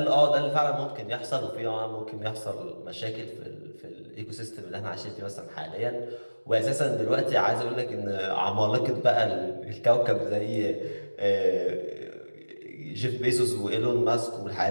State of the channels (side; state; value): both; inverted; correlation -1.00